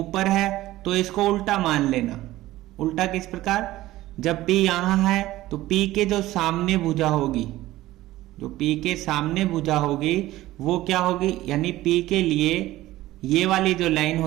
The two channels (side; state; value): left; quieter; 16.2 dB